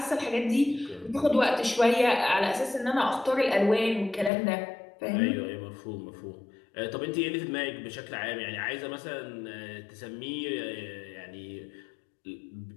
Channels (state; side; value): drops out; right; at 4.3 s